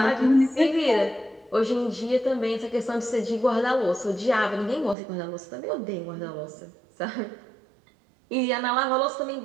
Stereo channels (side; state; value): left; drops out; at 5.0 s